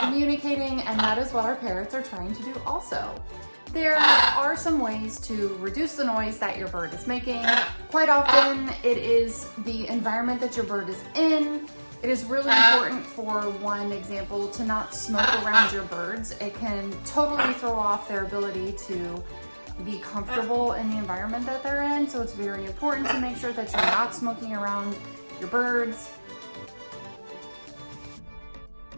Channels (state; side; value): inverted; both; correlation -1.00